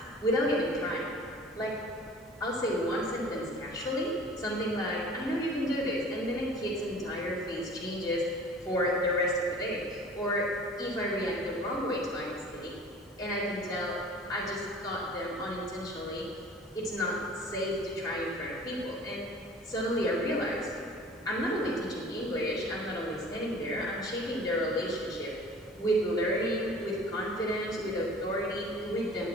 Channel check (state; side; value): normal; both; correlation 0.45